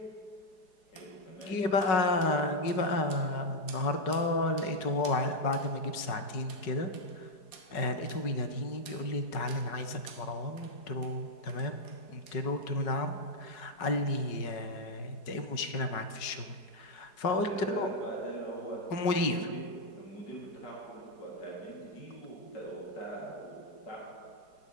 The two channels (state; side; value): late; right; 4.8 ms